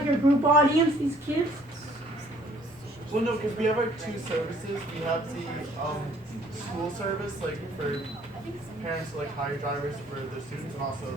your group audience, these kids? Well, no, because we have like two services. We have the school service, like for parents to like hire drivers for the students, and also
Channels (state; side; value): normal; both; correlation 0.59